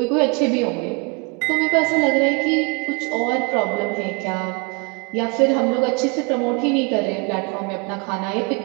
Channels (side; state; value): left; quieter; 31.5 dB